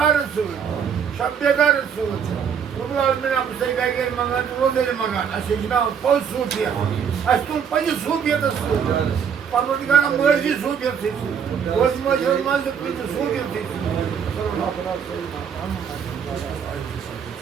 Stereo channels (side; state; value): left; quieter; 7.4 dB